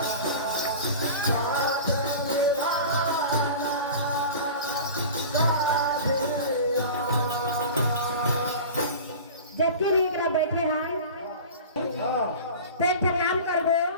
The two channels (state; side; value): inverted; both; correlation -0.35